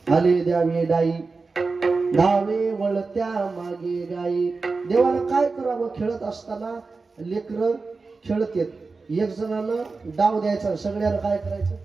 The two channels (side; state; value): left; quieter; 4.1 dB